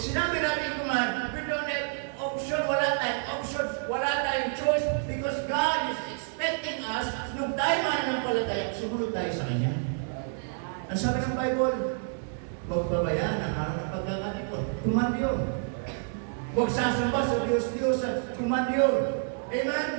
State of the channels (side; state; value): left; silent; digital silence